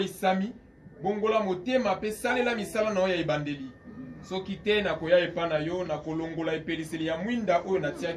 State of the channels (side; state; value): both; identical; correlation 1.00